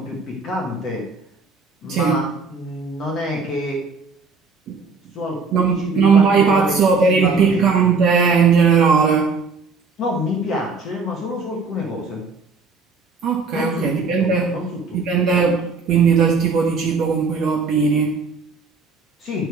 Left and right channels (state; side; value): quieter; left; 4.5 dB